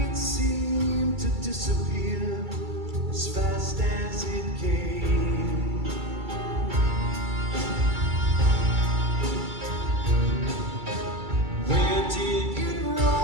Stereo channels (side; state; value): left; late; 2.3 ms